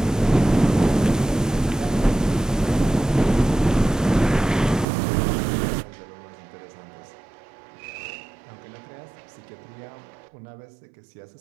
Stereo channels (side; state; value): left; drops out; at 4.9 s